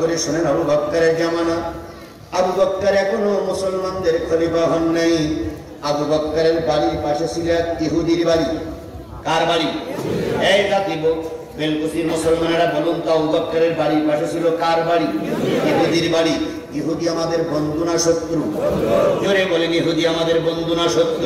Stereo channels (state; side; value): identical; both; correlation 1.00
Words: শোনেন, আবু বকরের জামানা। আবু বকর এখনো মুসলমানদের খলিফা হন নাই। আবু বকরের বাড়ির পাশে ছিল এক ইহুদির বাড়ি। কার বাড়ি? এই জাতিব বেলকুচির মুসলমানেরা বলুন তো, আবু বকরের বাড়ির পাশে ছিল কার বাড়ি? ইহুদির বাড়ি। ইহুদি আমাদের বন্ধু না শত্রু? জোরে বলেন, ইহুদি আমাদের বন্ধু না